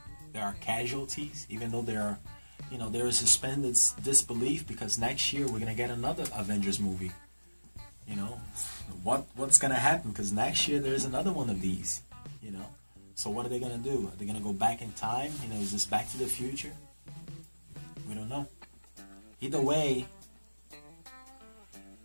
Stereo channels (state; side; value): inverted; both; correlation -1.00